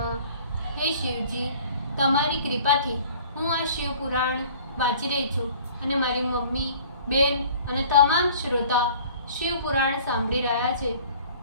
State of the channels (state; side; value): inverted; both; correlation -0.50